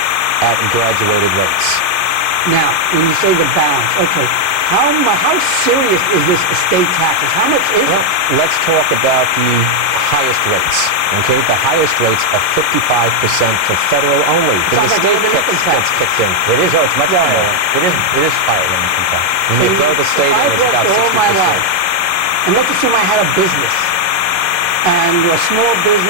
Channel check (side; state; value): left; late; 11 ms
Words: at graduated rates. Now, when you say the balance, okay, how serious is this estate taxes? How much is it? Let's talk about the highest rates. Okay, the highest rates are 55% for federal only. The state gets kicked in. It is, it's much higher. It is higher than income tax. When you throw the state in, it's about 60%. All my life, and let's assume I had a business, and a small